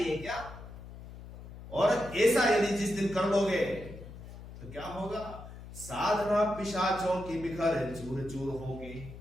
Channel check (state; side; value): noise; left; hum, 14 dB below the sound